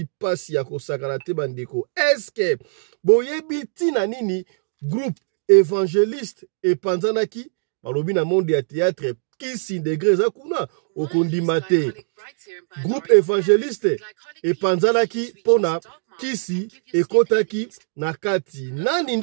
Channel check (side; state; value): left; silent; digital silence